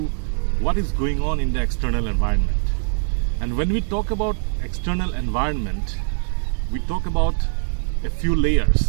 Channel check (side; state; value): left; silent; 64 dB below the other